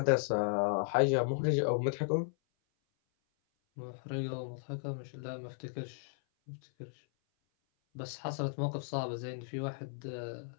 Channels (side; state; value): right; silent; 54 dB below the other